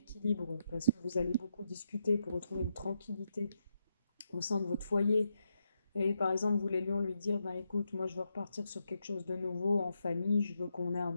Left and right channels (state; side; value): inverted; both; correlation -0.83